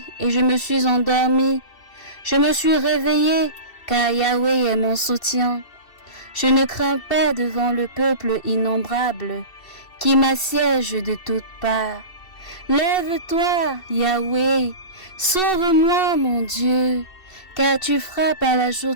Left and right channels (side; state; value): right; late; 2.7 ms